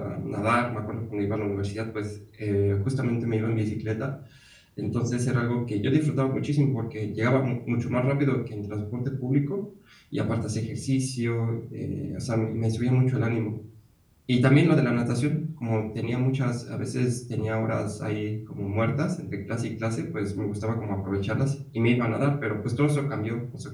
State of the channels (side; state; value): both; identical; correlation 1.00